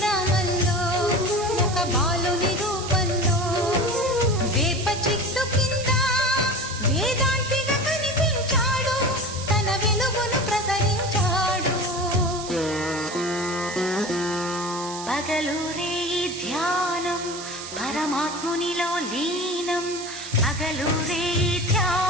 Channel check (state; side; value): noise; right; hiss, 10 dB below the sound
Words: ఒక బాలుని రూపంలో వేప చెట్టు కింద వేదాంతిగా కనిపించాడు, తన వెలుగును ప్రసరించాడు. పగలూరే ధ్యానం పరమాత్మునిలో లీనం, పగలూరే